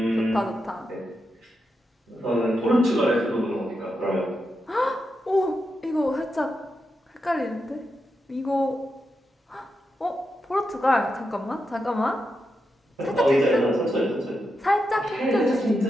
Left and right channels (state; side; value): normal; both; correlation 0.86